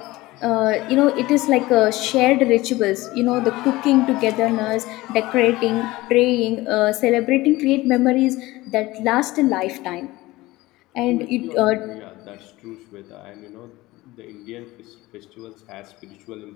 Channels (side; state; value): right; quieter; 19.2 dB